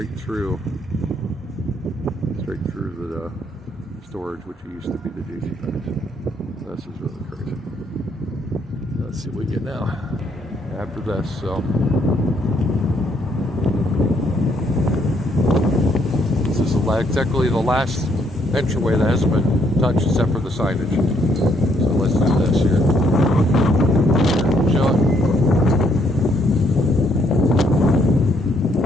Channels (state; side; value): normal; both; correlation 0.70